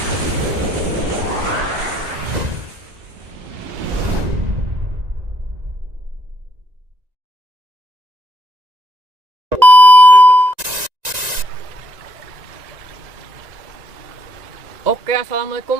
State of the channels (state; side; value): late; left; 1.9 ms